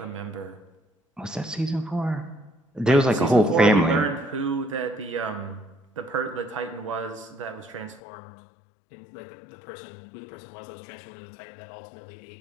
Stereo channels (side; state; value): right; drops out; at 8.0 s